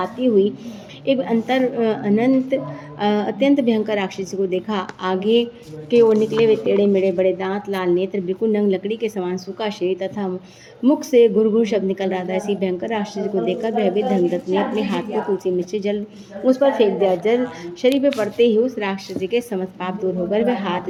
हुई एक अत्यंत भयंकर राक्षसी को देखा। आगे के ओर निकले हुए टेढ़े मेढ़े बड़े दांत, लाल नेत्र, बिल्कुल नंग लकड़ी के समान सूखा शरीर तथा मुख से गुरगुर शब्द निकल रहा था। ऐसी भयंकर राक्षसी को देखकर भयभीत धर्मदत्त ने अपने हाथ को तुलसी मिश्रित जल उस पर फेंक दिया। जल शरीर पर पड़ते ही उस राक्षसी के समस्त पाप दूर होकर वह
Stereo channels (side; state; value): both; identical; correlation 1.00